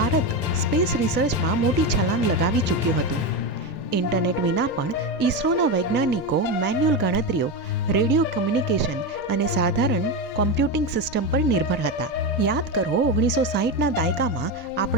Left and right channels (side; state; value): both; normal; correlation 0.15